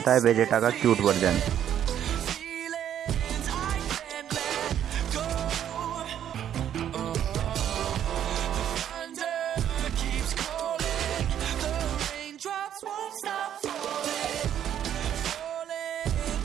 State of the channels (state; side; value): quieter; left; 10.1 dB